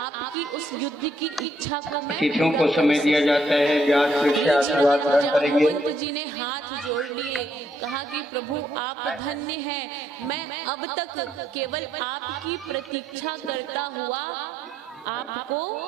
उस युद्ध की इच्छा को मैं, तिथियों को समय दिया जाता है। जाम्बवंत जी ने हाथ जोड़ लिए, कहा कि प्रभु आप धन्य हैं, मैं अब तक केवल आपकी प्रतीक्षा करता हुआ आपको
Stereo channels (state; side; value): normal; both; correlation 0.73